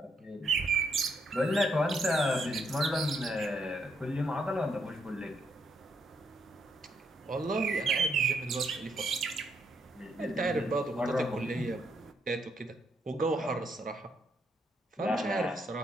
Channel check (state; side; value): normal; both; correlation 0.75